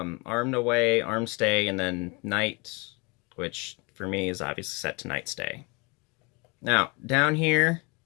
away, arm stay, and then night, which for me is obviously set to night stay. Now, down here,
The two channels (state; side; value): quieter; right; 29.2 dB